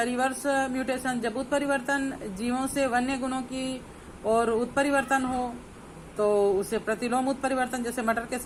रिवर्स म्यूटेशन, जब उत्परिवर्तन जीवों से वन्य गुणों की और उत्परिवर्तन हो तो उसे प्रतिलोम उत्परिवर्तन। जैसे मटर के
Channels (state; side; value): identical; both; correlation 1.00